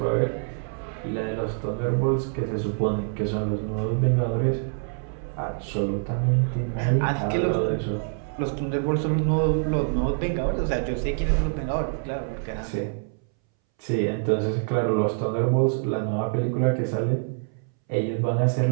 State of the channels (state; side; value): silent; left; 61 dB below the other